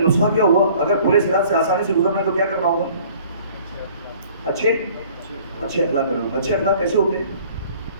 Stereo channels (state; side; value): inverted; both; correlation -0.53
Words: نسخہ کیا ہوا, اگر پلے صراط سے آسانی سے گزرنا ہے تو کیا کرنا ہوگا؟ اچھے اخلاق کرنا ہوگا. اچھے اخلاق کیسے ہوتے ہیں,